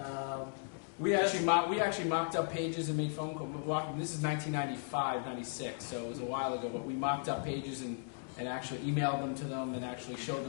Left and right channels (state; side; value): silent; right; digital silence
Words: We actually mocked up pages and made phone calls. This is 1995, 96, so it was a while ago. But we mocked up pages and actually emailed them to them and actually showed